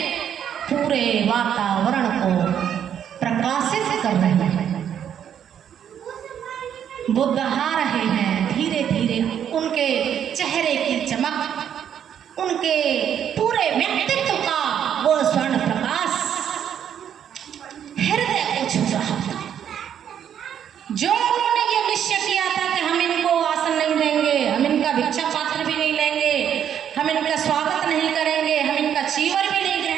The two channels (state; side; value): quieter; left; 9.2 dB